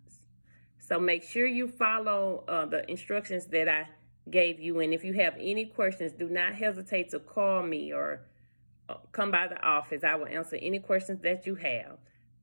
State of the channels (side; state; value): both; inverted; correlation -1.00